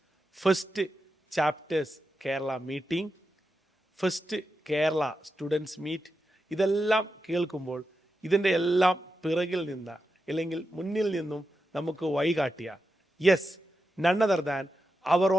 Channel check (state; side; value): normal; both; correlation 0.88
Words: first chapters Kerala meeting, first Kerala students meet, ഇതെല്ലാം കേൾക്കുമ്പോൾ ഇതിൻ്റെ എല്ലാം പിറകിൽ നിന്ന് അല്ലെങ്കിൽ മുന്നിൽ നിന്നും നമുക്ക് വഴികാട്ടിയ yes, none other than our